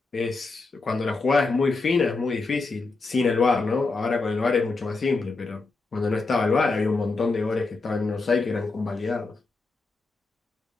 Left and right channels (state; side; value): quieter; right; 3.8 dB